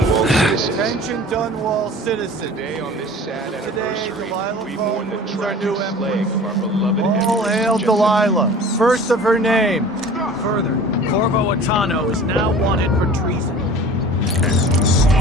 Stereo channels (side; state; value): both; normal; correlation 0.43